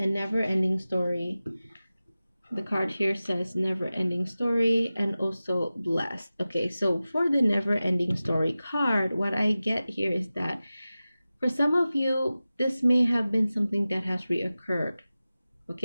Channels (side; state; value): both; inverted; correlation -0.96